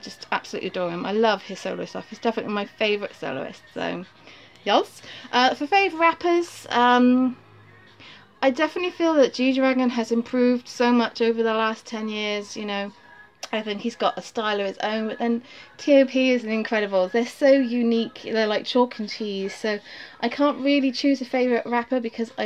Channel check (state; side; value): identical; both; correlation 1.00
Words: absolutely adore him. I love his solo stuff. He's definitely my favourite soloist. So, yes. For favourite rappers, I definitely feel that GDragon has improved so much over the last 10 years, you know. I think he's got a style of his own, but then T.O.P is incredible. They're so unique. They're like chalk and cheese. So I can't really choose a favourite rapper because I